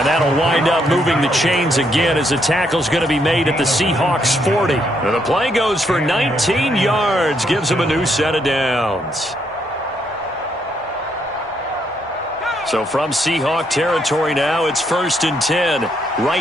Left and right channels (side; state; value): both; normal; correlation 0.74